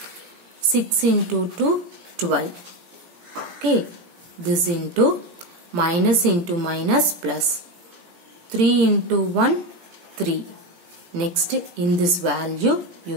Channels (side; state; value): left; late; 17 ms